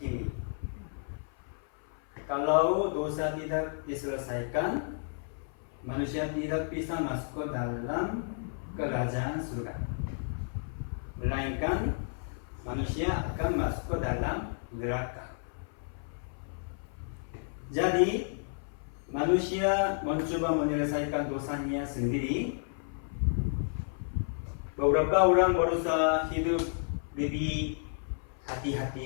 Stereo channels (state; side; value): silent; right; 56 dB below the other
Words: Kalau dosa tidak diselesaikan, manusia tidak bisa masuk ke dalam kerajaan surga. Melainkan manusia akan masuk ke dalam neraka. Jadi manusia mencoba menyelesaikan dosanya sendiri. Beberapa orang berusaha hidup lebih